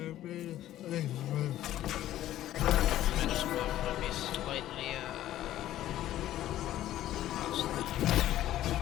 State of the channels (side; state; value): right; quieter; 13.4 dB